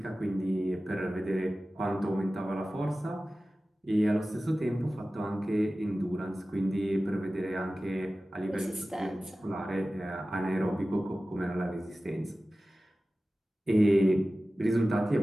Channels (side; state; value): both; normal; correlation 0.96